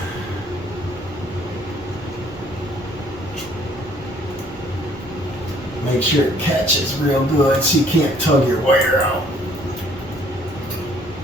Make sure it catches real good so you can't tug your wire out.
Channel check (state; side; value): normal; both; correlation 0.60